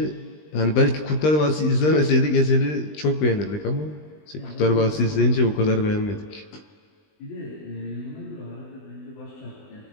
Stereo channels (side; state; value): right; late; 20 ms